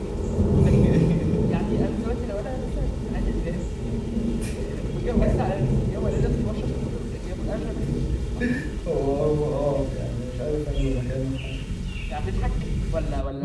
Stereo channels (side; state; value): both; identical; correlation 1.00